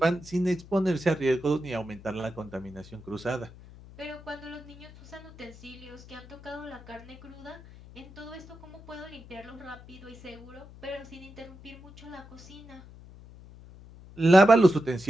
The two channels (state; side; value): noise; left; hum, 19 dB below the sound